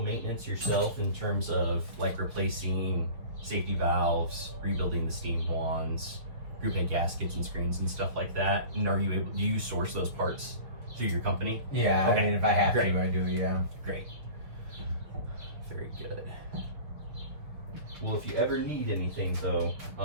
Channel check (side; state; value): left; late; 6.5 ms